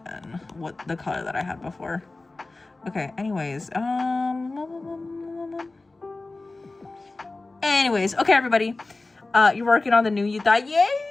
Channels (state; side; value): quieter; right; 3.3 dB